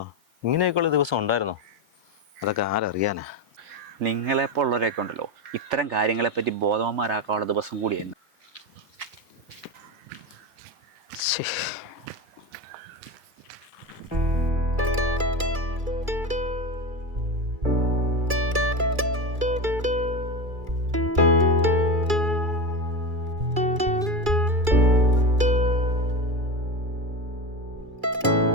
ഇങ്ങനെയൊക്കെയുള്ള ദിവസം ഉണ്ടായിരുന്നോ? അതൊക്കെ ആരറിയാനാ. നിങ്ങളെപ്പോലുള്ളവരൊക്കെ ഉണ്ടല്ലോ, ഇത്തരം കാര്യങ്ങളെപ്പറ്റി ബോധവാന്മാരാക്കാനുള്ള ദിവസം കൂടിയായിരുന്നു.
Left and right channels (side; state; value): left; late; 2.3 ms